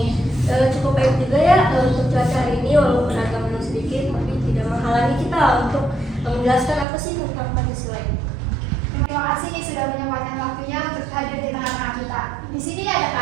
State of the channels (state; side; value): drops out; left; at 6.9 s